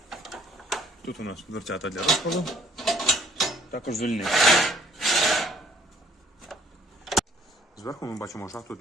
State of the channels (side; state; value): both; normal; correlation 0.60